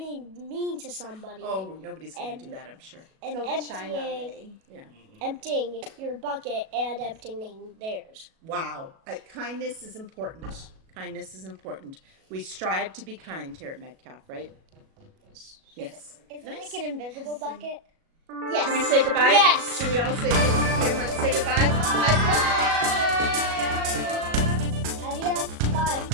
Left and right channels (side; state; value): left; late; 37 ms